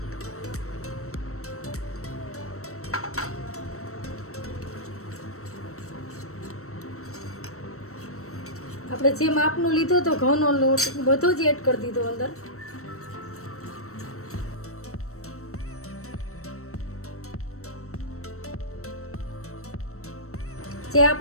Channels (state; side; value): late; right; 0.63 ms